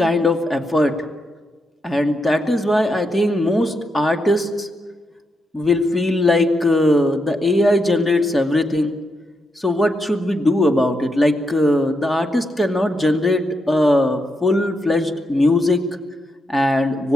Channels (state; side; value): normal; both; correlation 0.82